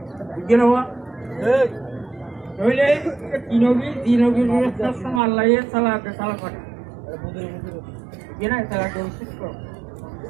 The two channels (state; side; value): drops out; left; at 5.2 s